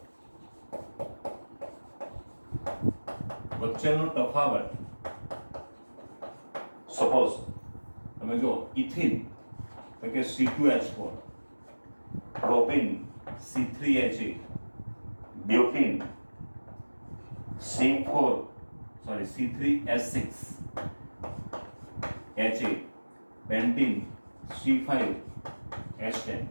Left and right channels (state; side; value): inverted; both; correlation -1.00